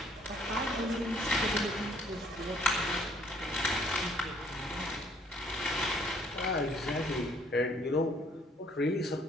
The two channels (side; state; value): both; normal; correlation 0.62